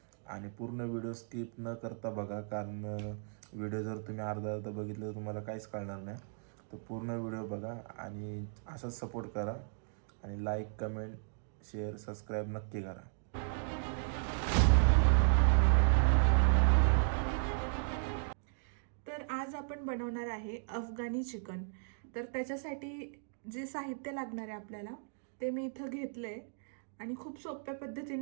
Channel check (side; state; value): left; silent; digital silence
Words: आणि पूर्ण व्हिडिओ स्किप न करता बघा, कारण व्हिडिओ जर तुम्ही अर्धा बघितलं तर तुम्हाला काहीच कळणार नाही. तर पूर्ण व्हिडिओ बघा आणि असाच सपोर्ट करा आणि लाईक, कमेंट, शेअर, सबस्क्राईब नक्की करा. तर आज आपण बनवणार आहे अफगाणी चिकन. तर त्याच्यासाठी जे साहित्य लागणार आहे आपल्याला ते मी इथं घेतलं आहे आणि खूप सोप्या